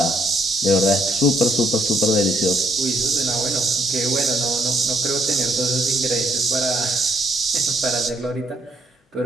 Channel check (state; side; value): normal; both; correlation 0.71